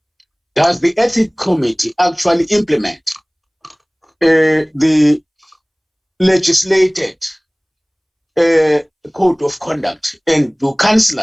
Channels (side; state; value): both; identical; correlation 1.00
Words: does the ethics committee actually implement the legislated code of conduct, and do